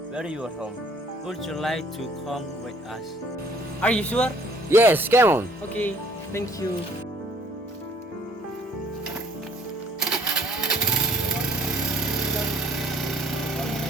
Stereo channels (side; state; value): both; normal; correlation 0.58